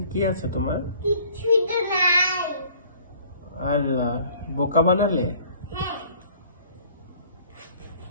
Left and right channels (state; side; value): inverted; both; correlation -0.54